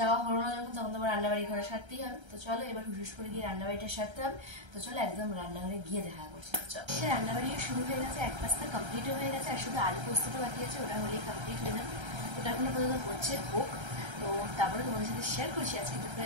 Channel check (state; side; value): late; left; 1.3 ms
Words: হলো না যখন, তখন তোমার রান্নাবাড়ি ঘরে সারতেই হবে। তো চলো এবার হুস করে গিয়ে রান্নাবাড়িটা সারতে হবে। তো চলো একদম রান্নাঘরে গিয়ে দেখা করছি। চলো সে রান্নাবাড়ি শুরু হয়ে গেছে, এক পাশটা কমপ্লিটও হয়ে গেছে, আর শুধু আলু পোস্তটা বাকি আছে, ওটা হলেই কমপ্লিট হয়ে যাবে। ওটা এখনো পর্যন্ত হচ্ছে হোক, তো তারপরে তোমাদের সাথে শেয়ার করছি আজকে দুপুরে